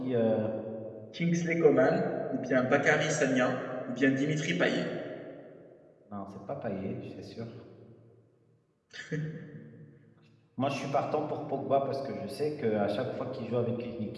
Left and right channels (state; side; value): identical; both; correlation 1.00